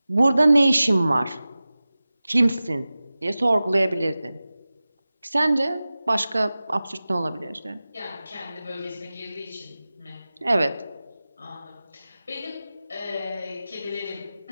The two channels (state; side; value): inverted; both; correlation -0.96